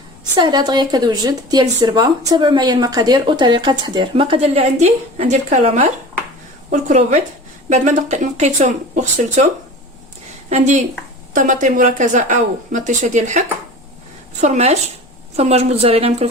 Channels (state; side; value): normal; both; correlation 0.37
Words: سهله دغيا كتوجد ديال الزربه. تابعوا معايا المقادير وطريقه التحضير. المقادير اللي عندي الكالامار والكروفيت بعد ما نقيتهم وغسلتهم، عندي طماطم مركزه او مطيشه ديال الحك، فرماج موتزاريلا، يمكن